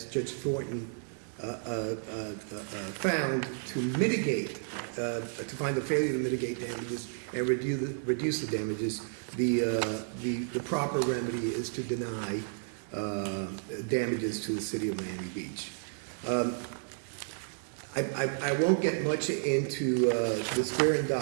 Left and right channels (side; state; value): left; silent; digital silence